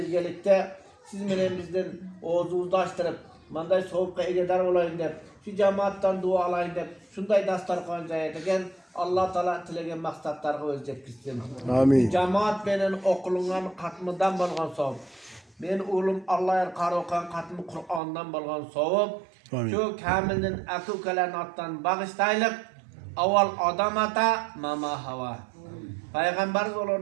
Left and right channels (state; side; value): drops out; left; at 18.0 s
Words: siz menen bizden oğuzumuzni açtırıp manday sovuqqa egedar olayın deb şu cemaattan dua alayın deb şunday dastarxon jayadigan Allah Teala tilegen maqsadlarga o'z yetkizsin. Amin. Cemaat menen oqilgan qatmıdan bolgan savob. Men o'g'lim Alloh qaroqan qatmi Qur'ondan bolgan savob. Amin. Şu kamilning aka-ukalarning otdan bag'ishtaylik. Avval odam ata, mama hava. Peygamberimiz olur